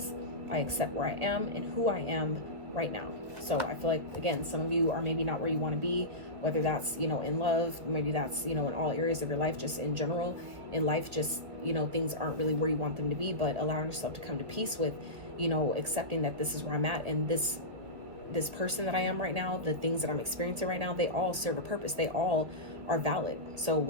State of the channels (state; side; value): late; left; 2.2 ms